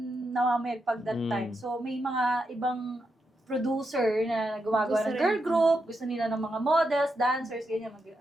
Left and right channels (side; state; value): both; normal; correlation 0.84